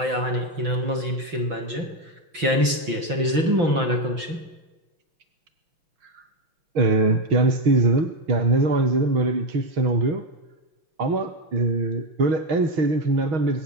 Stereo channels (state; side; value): late; left; 6.0 ms